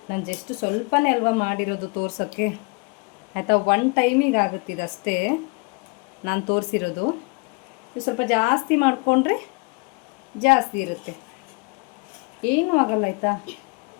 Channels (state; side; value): quieter; right; 30.6 dB